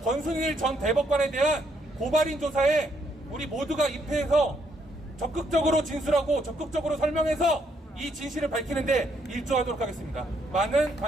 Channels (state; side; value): normal; both; correlation 0.73